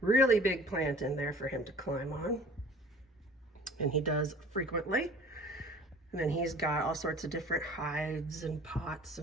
really big plant in there for him to climb on, and he does frequently. And then he's got all sorts of different hides and pots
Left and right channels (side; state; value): both; normal; correlation 0.47